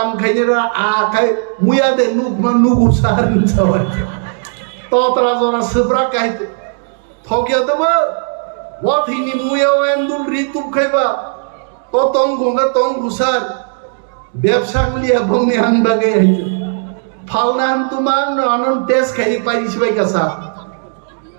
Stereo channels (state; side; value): silent; left; digital silence